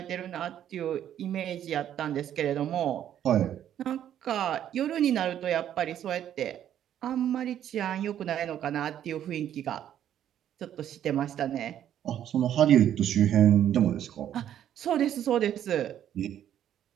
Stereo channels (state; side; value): quieter; left; 10.6 dB